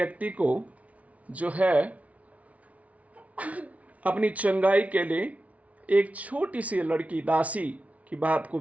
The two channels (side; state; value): left; late; 0.067 ms